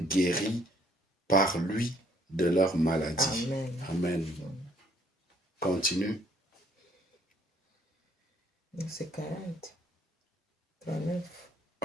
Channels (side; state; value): both; normal; correlation 0.63